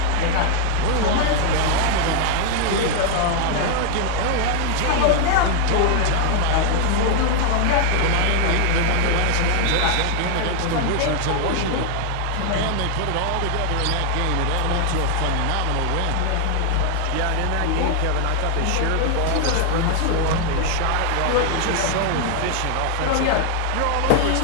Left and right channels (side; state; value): both; different; correlation 0.00